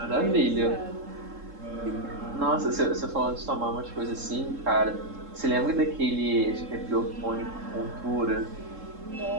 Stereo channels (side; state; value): left; late; 3.7 ms